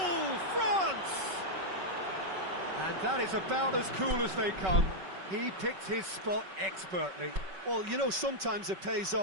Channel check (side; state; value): left; late; 5.3 ms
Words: France! And that is about as cool as they come. He picked his spot expertly. Well, you know, sometimes it pays